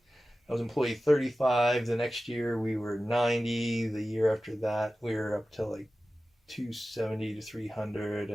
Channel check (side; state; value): both; normal; correlation 0.95